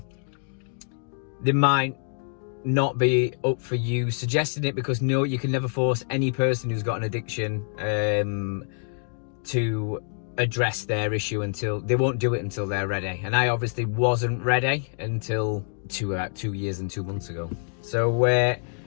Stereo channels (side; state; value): right; silent; digital silence